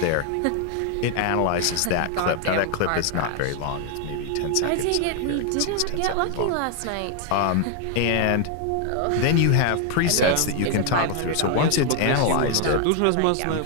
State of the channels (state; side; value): different; both; correlation 0.00